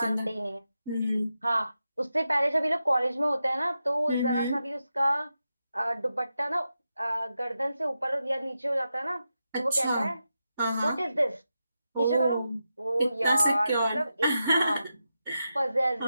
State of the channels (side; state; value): both; inverted; correlation -0.88